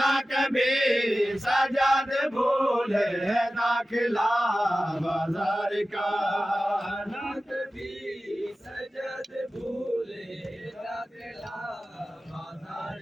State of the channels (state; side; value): normal; both; correlation 0.95